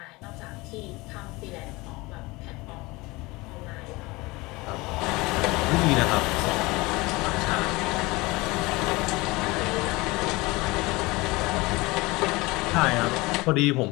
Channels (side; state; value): right; quieter; 22.7 dB